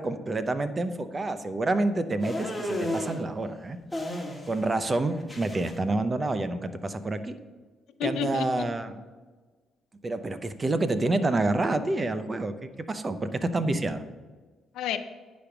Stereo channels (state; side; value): normal; both; correlation 0.86